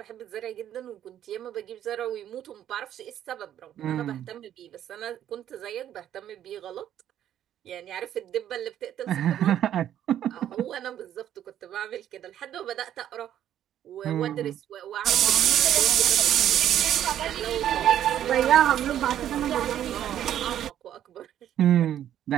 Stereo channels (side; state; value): left; quieter; 11.0 dB